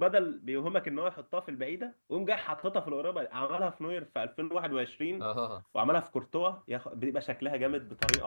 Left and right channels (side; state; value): both; inverted; correlation -1.00